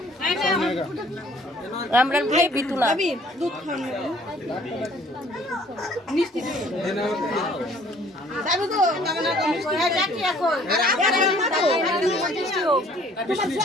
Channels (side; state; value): both; normal; correlation 0.57